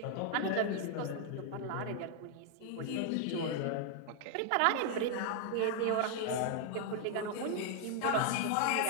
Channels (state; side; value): different; both; correlation 0.00